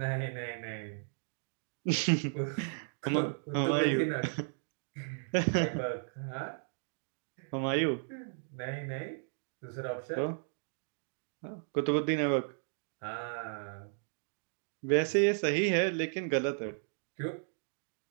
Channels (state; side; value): silent; left; digital silence